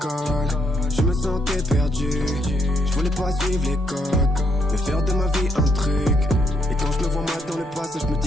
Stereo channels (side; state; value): both; normal; correlation 0.76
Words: je me sentais perdu. Je voulais pas suivre les codes, mais faire de ma vie un truc. Et quand je me vois mal dans le passé, je me